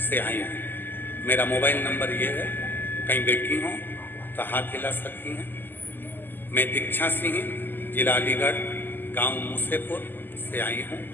से आई हूँ। मेरा मोबाइल नंबर ये है, कहीं बैठी हो तो हाथ हिला सकती हैं। मैं दीक्षा सिंह, जिला अलीगढ़, गांव मूसेपुर से आई हूँ।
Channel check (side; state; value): right; late; 0.092 ms